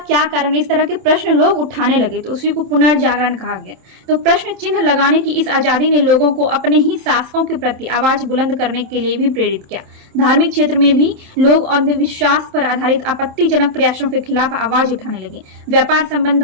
कारण, इस तरह के प्रश्न लोग उठाने लगे। तो उसी को पुनर्जागरण कहा गया। तो प्रश्न चिन्ह लगाने की इस आजादी ने लोगों को अपने ही शासकों के प्रति आवाज बुलंद करने के लिए भी प्रेरित किया। धार्मिक क्षेत्र में भी लोग अंधविश्वास पर आधारित आपत्तिजनक प्रयासों के खिलाफ आवाज उठाने लगे। व्यापार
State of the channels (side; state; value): left; late; 27 ms